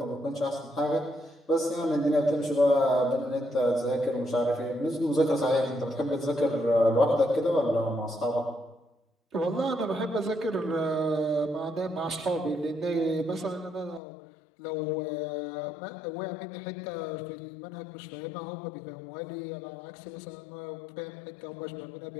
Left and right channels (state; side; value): drops out; right; at 14.0 s